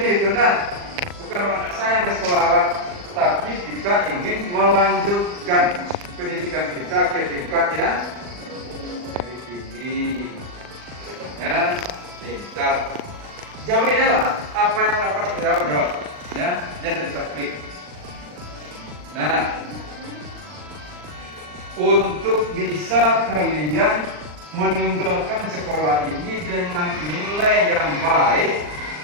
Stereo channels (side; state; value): left; late; 39 ms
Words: itu nah, bukan tidak sayang di sekolah, tapi kita ingin melanjutkan pendidikan kita ke tingkat yang lebih tinggi. Ya, tingkat. Jawabnya lah apa yang dapat dijawab. Ya, jadi taktik. Nah, untuk bisa kalian meninggalkan sekolah ini dengan nilai yang baik,